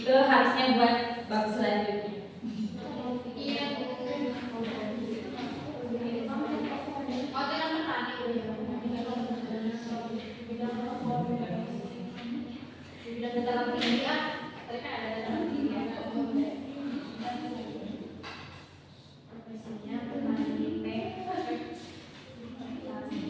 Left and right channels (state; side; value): identical; both; correlation 1.00